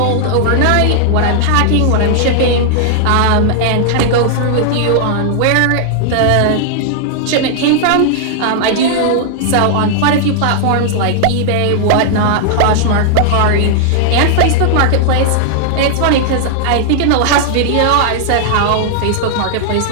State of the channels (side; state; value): both; different; correlation -0.01